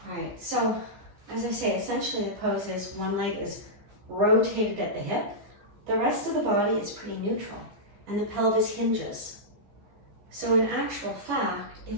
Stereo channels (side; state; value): left; late; 14 ms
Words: All right, so as I say, essentially the pose is one leg is rotated at the hip. The rest of the body is pretty neutral, and the pelvis hinges. So in actual fact,